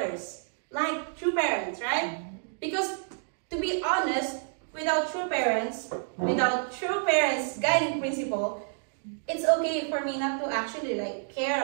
Like true parents, right? Because, to be honest, without true parents guiding principle, it's okay for me not to actually like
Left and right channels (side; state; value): left; silent; digital silence